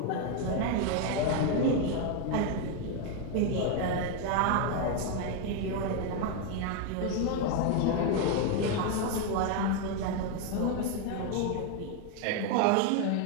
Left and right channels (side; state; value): both; different; correlation 0.01